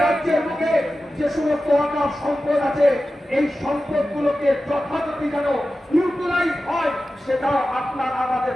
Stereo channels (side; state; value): both; normal; correlation 0.94